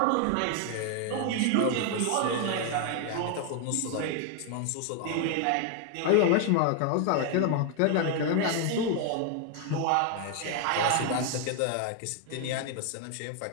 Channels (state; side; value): different; both; correlation 0.00